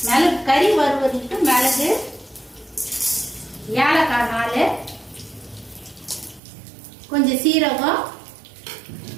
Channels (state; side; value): drops out; left; at 6.4 s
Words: கறி வறுவதுக்கு மிளகு, ஏலக்காய் 4, கொஞ்சம் சீரகம்,